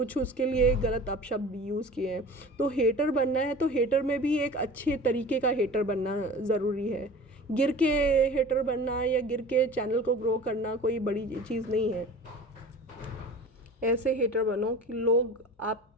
उसके लिए गलत अपशब्द यूज़ किए हैं। तो हेटर बनना है तो हेटर में भी एक अच्छे तरीके का हेटर बनना ज़रूरी है। गिर के हेटर बनना या गिर के चैनल को ग्रो करना कोई बड़ी चीज़ नहीं है। ऐसे हेटर बनो कि लोग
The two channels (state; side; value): normal; both; correlation 0.39